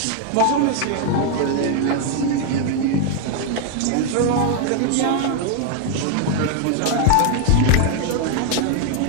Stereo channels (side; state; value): both; different; correlation 0.00